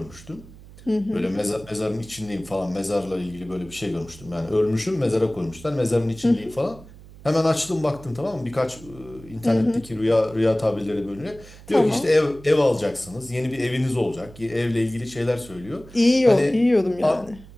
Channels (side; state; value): right; noise; hum, 20 dB below the sound